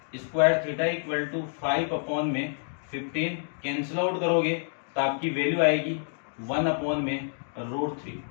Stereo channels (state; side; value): silent; right; digital silence